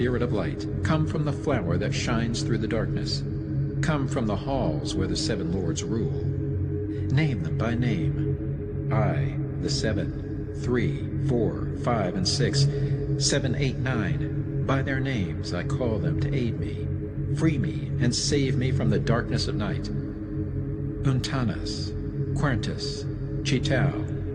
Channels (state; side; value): identical; both; correlation 1.00